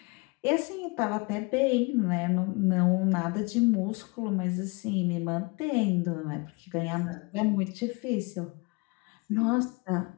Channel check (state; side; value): quieter; right; 28.2 dB